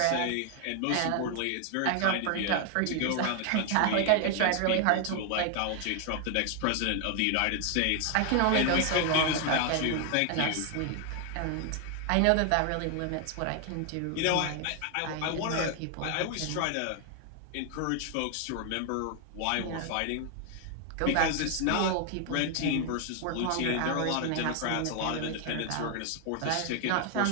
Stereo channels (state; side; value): different; both; correlation 0.00